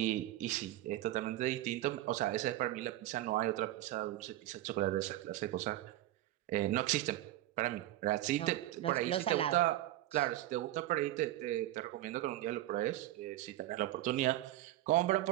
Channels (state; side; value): quieter; left; 14.9 dB